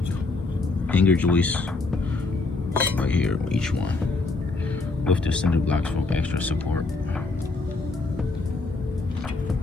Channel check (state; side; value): quieter; right; 3.6 dB